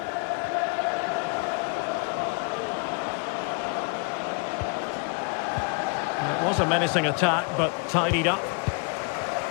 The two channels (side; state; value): right; quieter; 33.0 dB